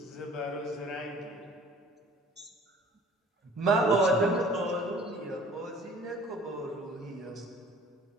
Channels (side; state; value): both; normal; correlation 0.51